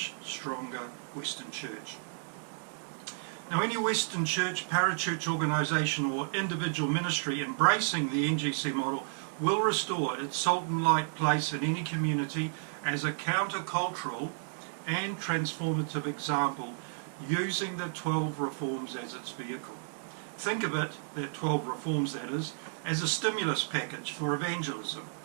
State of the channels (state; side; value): silent; left; digital silence